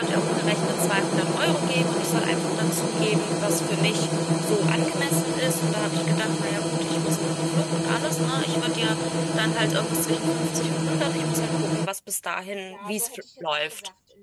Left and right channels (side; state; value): both; identical; correlation 1.00